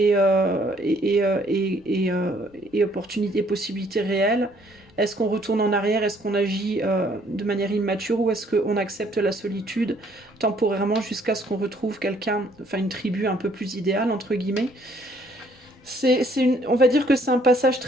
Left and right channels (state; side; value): normal; both; correlation 0.64